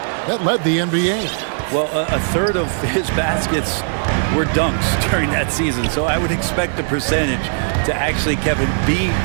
That led the NBA. Well, a third of his baskets were dunks during that season, so I would expect the percentage to actually, Kevin, be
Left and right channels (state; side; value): silent; left; digital silence